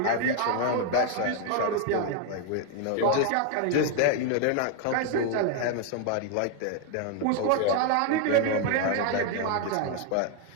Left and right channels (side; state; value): both; different; correlation 0.00